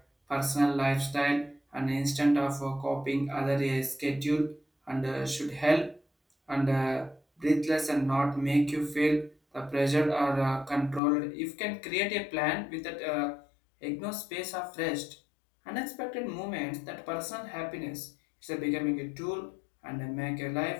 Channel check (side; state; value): right; drops out; at 11.0 s